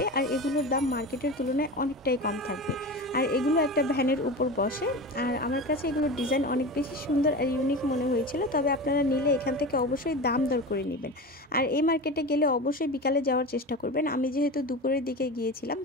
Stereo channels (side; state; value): both; normal; correlation 0.28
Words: আর এগুলোর দাম মার্কেটের তুলনায় অনেকটাই কম থাকবে। আর এগুলো একটা ভ্যানের উপর বসে। আর আমার কাছে এগুলোর ডিজাইন অনেক বেশি সুন্দর আর ইউনিক মনে হয়েছিল। তবে আপনারা নিলে এখান থেকে অবশ্যই দাম দর করে নেবেন। আর এই মার্কেটে গেলে অবশ্যই বিকালে যাওয়ার চেষ্টা করবেন। আমি যেহেতু দুপুরের দিকে গিয়েছিলাম